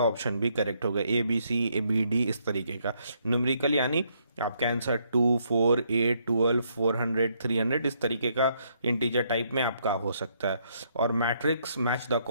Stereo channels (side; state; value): both; inverted; correlation -0.72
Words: ऑप्शन भी करेक्ट होगा, A B C A B D इस तरीके का। न्यूमेरिकल यानी आपका आंसर 2, 4, 8, 12, 400, 300 इस तरीके का इंटीजर टाइप में आपका हो सकता है। और मैट्रिक्स मैच द